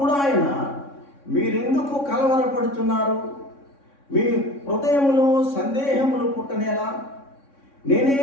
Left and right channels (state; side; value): late; right; 3.6 ms